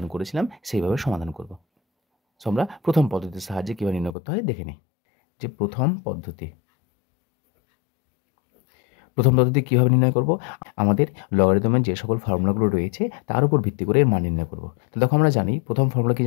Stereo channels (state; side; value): drops out; right; at 4.2 s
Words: করেছিলাম সেইভাবে সমাধান করব। সো আমরা প্রথম পদ্ধতির সাহায্যে কীভাবে নির্ণয় করতে হয় দেখে নিই। যে প্রথম পদ্ধতি কীভাবে নির্ণয় করব, আমাদের লগারিদমের যে সকল ফর্মুলাগুলো রয়েছে তার উপর ভিত্তি করে এর মান নির্ণয় করব। তো দেখো আমরা জানি প্রথম ফর্মুলা কি